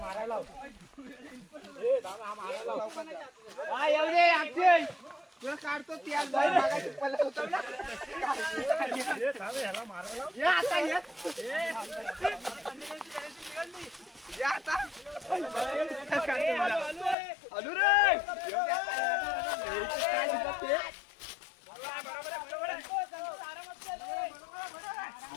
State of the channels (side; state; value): right; drops out; at 17.2 s